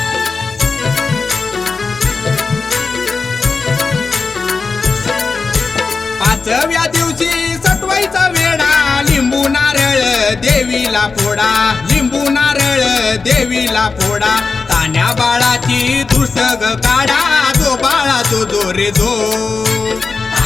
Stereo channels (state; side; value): quieter; right; 4.4 dB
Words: पाचव्या दिवशी सटवायचा वेळा, लिंबू नारळ देवीला फोडा, लिंबू नारळ देवीला फोडा. तान्या बाळाची दुष्ट ग काढा, जो बाळा जो जो रे जो.